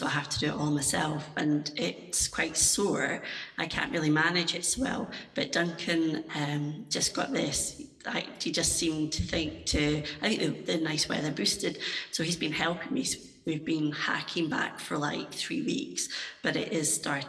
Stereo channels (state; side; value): identical; both; correlation 1.00